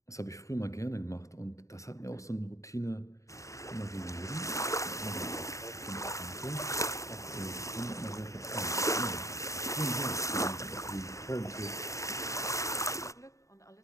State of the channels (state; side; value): late; right; 0.15 ms